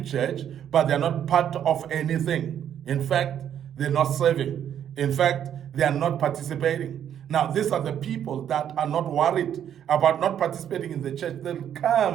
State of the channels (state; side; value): quieter; left; 9.7 dB